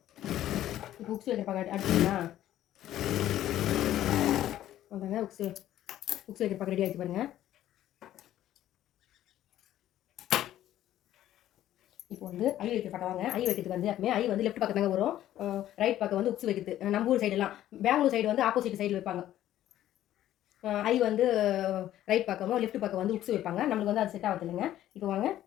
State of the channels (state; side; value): quieter; right; 12.8 dB